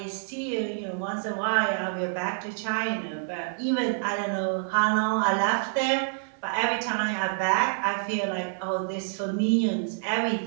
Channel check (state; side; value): silent; left; 60 dB below the other